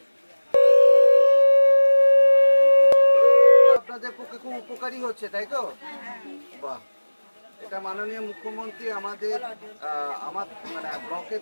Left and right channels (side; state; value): both; inverted; correlation -1.00